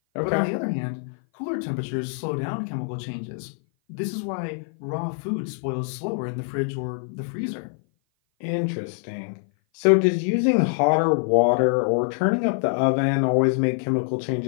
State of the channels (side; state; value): right; silent; 57 dB below the other